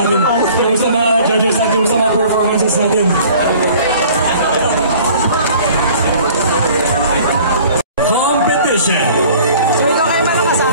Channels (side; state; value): both; inverted; correlation -0.50